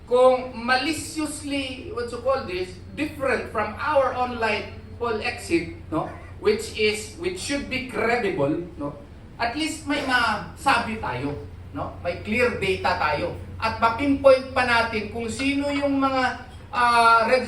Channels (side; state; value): both; identical; correlation 1.00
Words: kung maliciously, what you call this, different from our online poll exit, no? Which should be credible, no? At least may masabi tayo, no? May clear data tayo. At mapinpoint pa natin kung sino yung mga